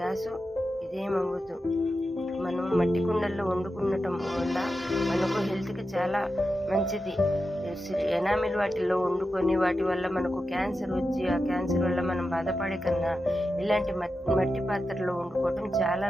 ఇదేమవ్వదు. మనం మట్టి కుండల్లో వండుకునటం వల్ల మనకు హెల్త్కి చాలా మంచిది. ఎనామిల్ వాటిల్లో వండుకొని వాటి వల్ల మనకు క్యాన్సర్ వచ్చి ఆ క్యాన్సర్ వల్ల మనం బాధపడే కన్నా ఇలాంటి మట్టి పాత్రలో వండుకోవటం చాలా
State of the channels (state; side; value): normal; both; correlation 0.90